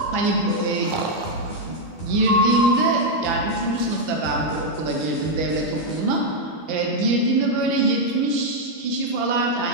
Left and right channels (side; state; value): right; late; 12 ms